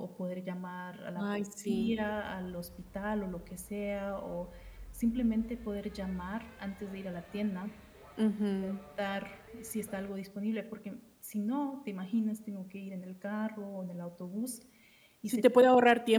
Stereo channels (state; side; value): identical; both; correlation 1.00